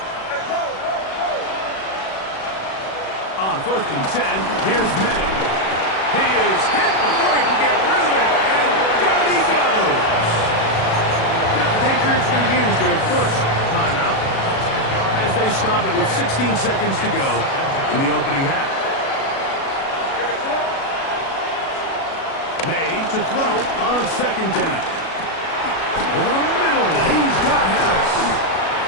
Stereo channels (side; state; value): right; late; 37 ms